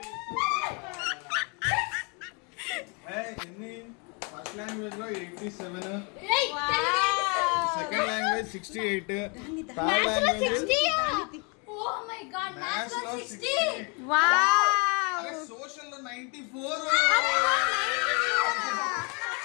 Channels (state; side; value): quieter; right; 33.5 dB